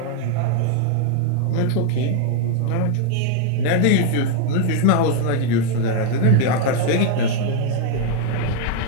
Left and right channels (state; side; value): different; both; correlation 0.00